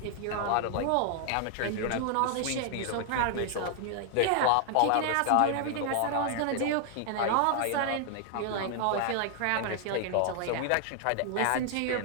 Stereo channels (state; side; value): different; both; correlation 0.00